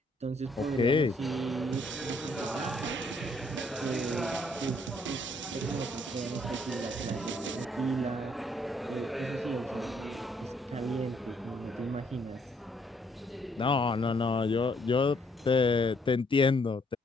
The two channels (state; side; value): normal; both; correlation 0.68